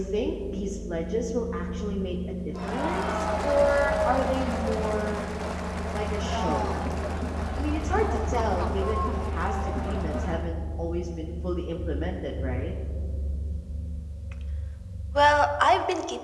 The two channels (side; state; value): both; identical; correlation 1.00